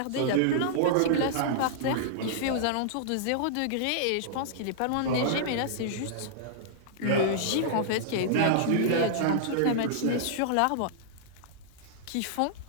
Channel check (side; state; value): both; different; correlation -0.01